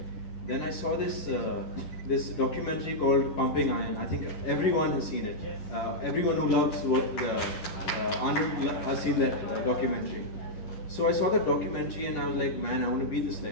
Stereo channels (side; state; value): right; late; 10 ms